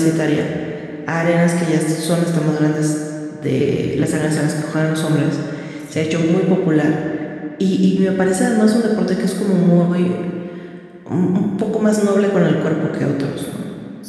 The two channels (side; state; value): both; identical; correlation 1.00